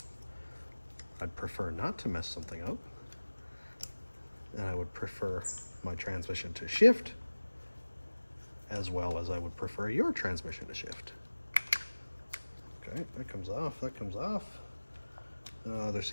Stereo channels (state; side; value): inverted; both; correlation -1.00